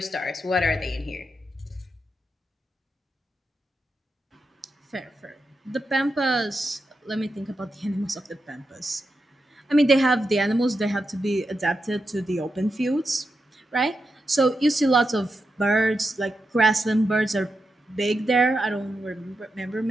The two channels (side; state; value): both; normal; correlation 0.87